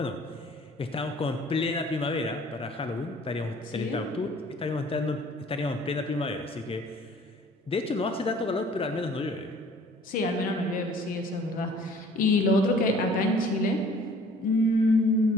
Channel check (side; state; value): both; normal; correlation 0.53